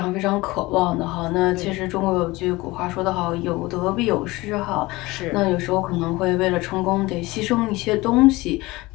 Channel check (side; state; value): right; quieter; 20.9 dB